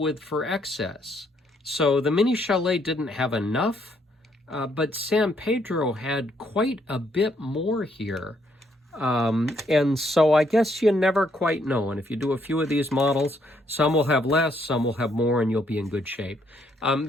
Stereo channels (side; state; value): both; normal; correlation 0.71